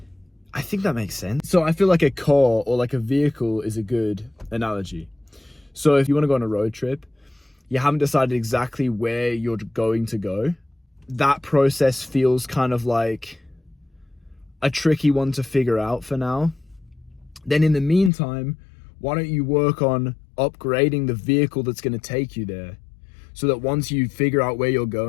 I think that makes sense. So I feel like a car or like a vehicle is a good analogy. So if you want to go on a road trip, you haven't decided exactly where you're going to go. That process feels kind of like a tricky one to figure out for now. Then in the meantime, why don't you work on upgrading the vehicle that's going to take you there, so that once you figure out where you're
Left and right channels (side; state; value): right; drops out; at 18.1 s